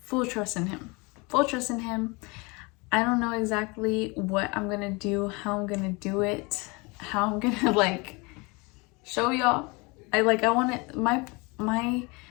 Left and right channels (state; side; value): quieter; right; 27.4 dB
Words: full trust in him. Full trust in him. I don't know exactly what I'm gonna do, how I'm gonna do it, how I'm gonna like show y'all. I want it,